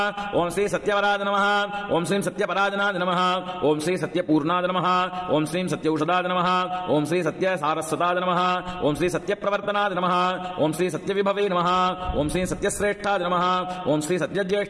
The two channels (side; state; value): both; identical; correlation 1.00